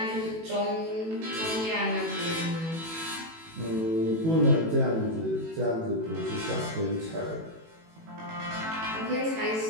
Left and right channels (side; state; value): left; late; 18 ms